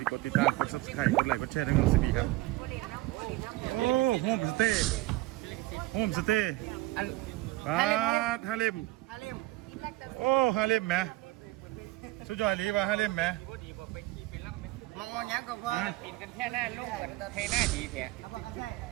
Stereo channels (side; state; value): left; quieter; 19.1 dB